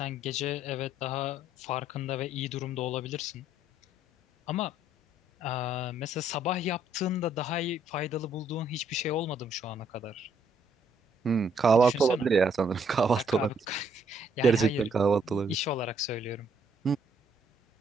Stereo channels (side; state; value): both; normal; correlation 0.67